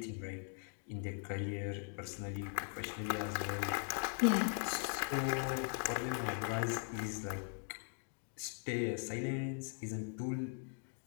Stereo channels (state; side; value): silent; right; 51 dB below the other